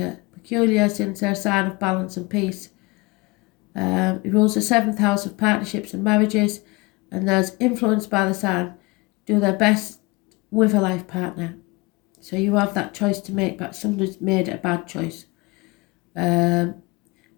peculiar since they're a sign of balance and peace. It rules the 7th house of partnerships and marriages, and those influenced by the sign do their best with a life partner. So you have that choice to make, but somebody's made a bad choice. But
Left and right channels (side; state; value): right; quieter; 24.9 dB